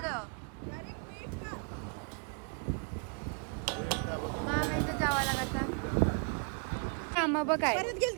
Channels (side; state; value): left; quieter; 39.3 dB